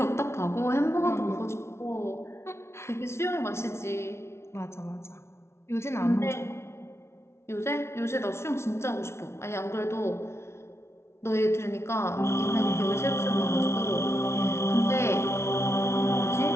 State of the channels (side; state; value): right; late; 0.13 ms